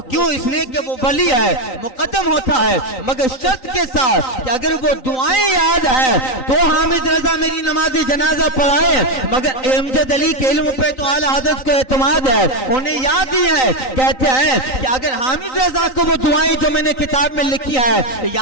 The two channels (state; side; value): late; right; 3.9 ms